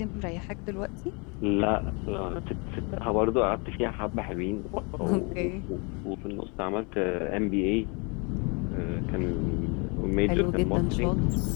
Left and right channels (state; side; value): quieter; right; 32.0 dB